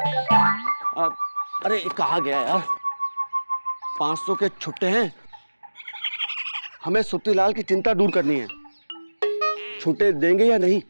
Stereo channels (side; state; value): both; inverted; correlation -1.00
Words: अरे कहाँ गया यार? 500 के छुट्टे हैं, हमें सुत्तीलाल की चिंता दूर करनी है। छुट्टे देंगे या नहीं?